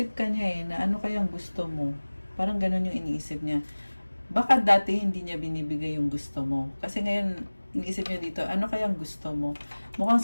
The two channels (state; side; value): inverted; both; correlation -1.00